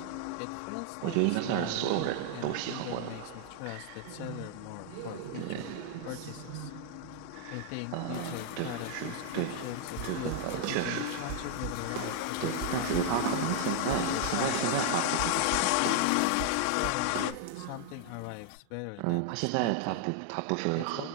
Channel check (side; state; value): both; different; correlation 0.00